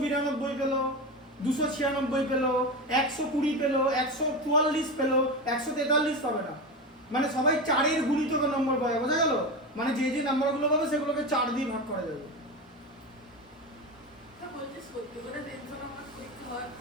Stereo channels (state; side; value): normal; both; correlation 0.21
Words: পেলো, 296 পেলো, 120 পেলো, 144 পেলো, 143 পাবে না। মানে সবাই 4 গুণিতকের নম্বর পাবে, বোঝা গেল? মানে যে যে নাম্বারগুলো পাবে সেগুলোকে 4 দিয়ে ভাগ করা যাবে।